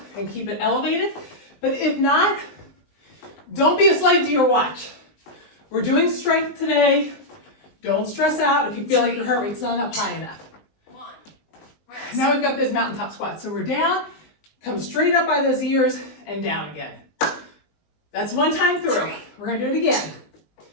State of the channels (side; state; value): right; late; 19 ms